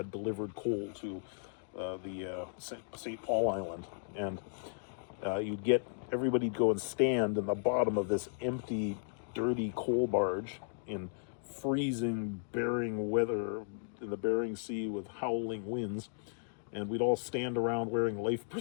delivered coal to the St. Paul Island. And everybody'd go and stand in the bottom of this empty, dirty coal barge in freezing Bering weather in the Bering Sea with howling winds, and we'd all stand around wearing life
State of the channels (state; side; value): silent; right; digital silence